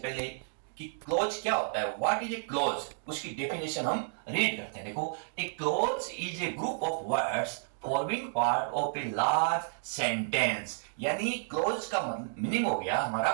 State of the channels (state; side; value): silent; left; digital silence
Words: कि क्लोज क्या होता है, व्हाट इज ए क्लोज, उसकी डेफिनेशन हम रीड करते हैं। देखो, a clause is a group of words forming part of a large sentence. यानी क्लोज का मीनिंग हो गया हमारा